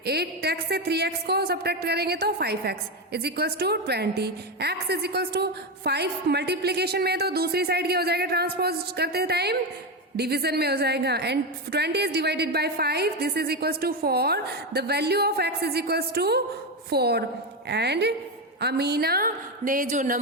8x से 3x को सब्ट्रैक्ट करेंगे तो 5x is equals to 20. x is equals to 5 multiplication में, तो दूसरी साइड क्या हो जाएगा ट्रांसपोज करते टाइम डिवीजन में हो जाएगा, and 20 is divided by 5, this is equals to 4. The value of x is equals to 4, and Amina ने जो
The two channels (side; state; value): both; normal; correlation 0.13